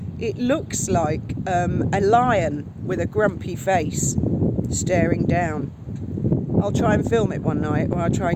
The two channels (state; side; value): identical; both; correlation 1.00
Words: it looks like a lion with a grumpy face staring down. I'll try and film it one night, or I'll try